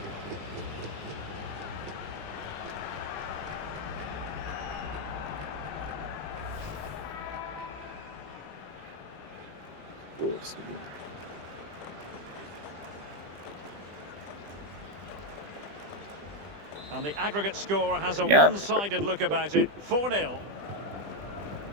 And the aggregate score has a one-sided look about it. 4-0.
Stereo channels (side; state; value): left; late; 20 ms